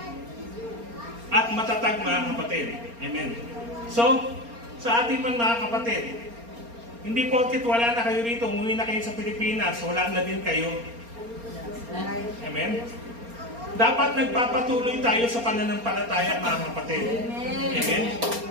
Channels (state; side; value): late; left; 4.3 ms